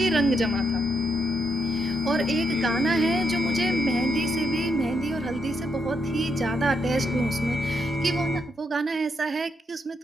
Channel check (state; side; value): normal; both; correlation 0.79